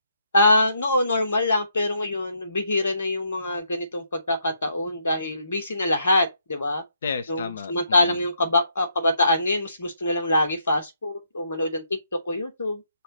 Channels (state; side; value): inverted; both; correlation -0.75